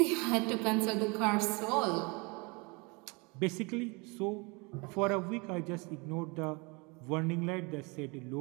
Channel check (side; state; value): left; quieter; 28.7 dB